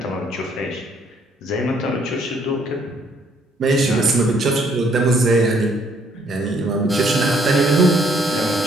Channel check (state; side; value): normal; both; correlation 0.66